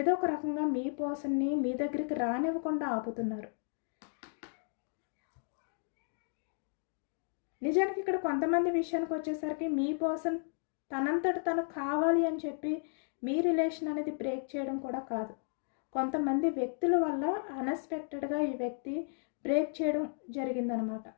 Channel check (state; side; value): silent; right; digital silence